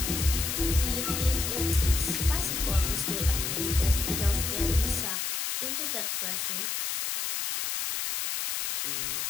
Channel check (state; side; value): noise; left; hiss, 1 dB below the sound